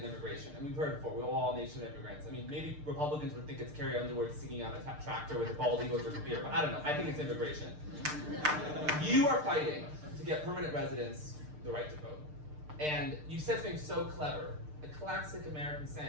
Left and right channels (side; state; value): left; late; 6.6 ms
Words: immigration. And we've heard it before, we're all a nation of immigrants. I mean, maybe Republicans would think it's Carrie Underwood singing on a tractor with a bald eagle drinking beer, but I don't know. I think it's immigration. You are fighting to get permanent residents the right to vote. And you said something so clever, a classic American